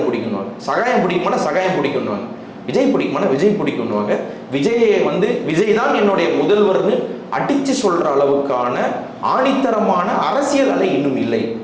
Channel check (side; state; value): both; identical; correlation 1.00